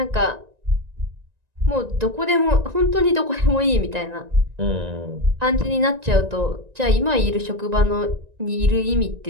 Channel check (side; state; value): left; late; 1.9 ms